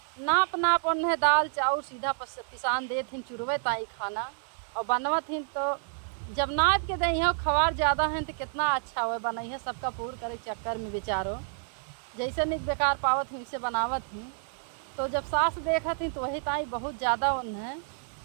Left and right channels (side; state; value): left; silent; digital silence